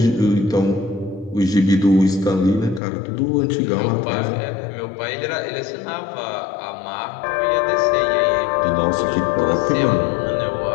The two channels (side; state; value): right; drops out; at 2.8 s